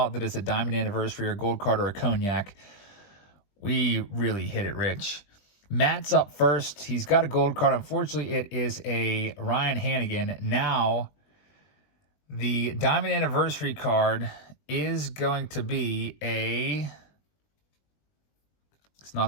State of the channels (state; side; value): late; right; 20 ms